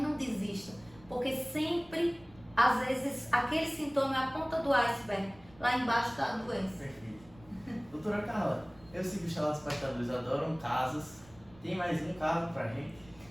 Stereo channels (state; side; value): noise; right; rumble, 24 dB below the sound